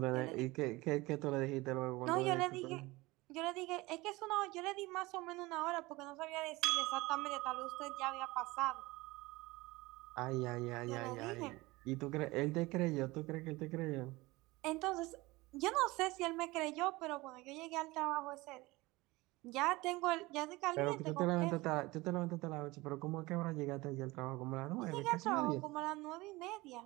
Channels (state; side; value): quieter; left; 21.4 dB